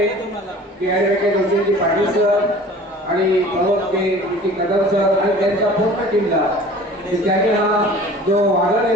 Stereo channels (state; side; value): normal; both; correlation 0.45